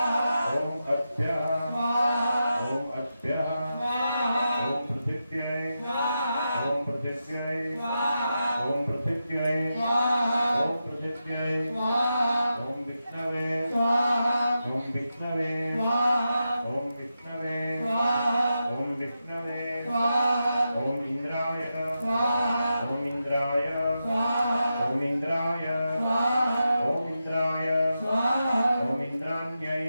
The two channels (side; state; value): both; inverted; correlation -0.88